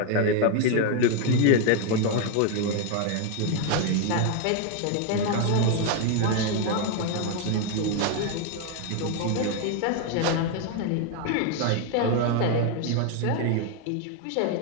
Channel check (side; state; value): both; different; correlation 0.01